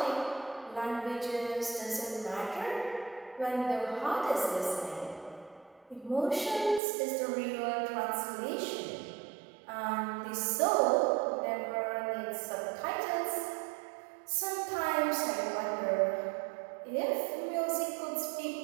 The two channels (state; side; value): drops out; left; at 6.8 s